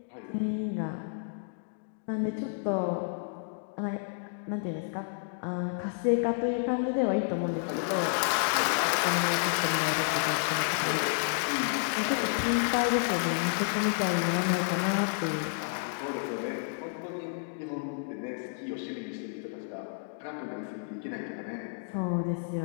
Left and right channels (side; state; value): right; silent; digital silence